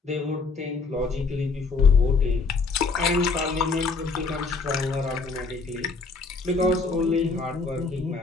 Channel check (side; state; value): right; quieter; 4.2 dB